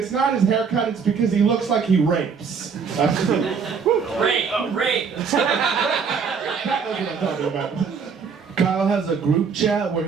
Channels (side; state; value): left; quieter; 5.9 dB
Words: not his haircut, it's because he looks like he rapes. Rape. That's what I'm talking about. Kyle has a group chat where